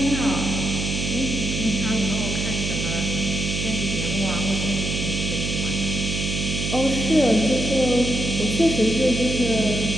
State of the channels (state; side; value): noise; right; hum, 3 dB below the sound